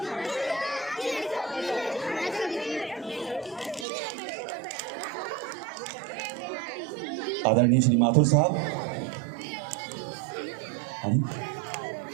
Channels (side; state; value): left; drops out; at 3.9 s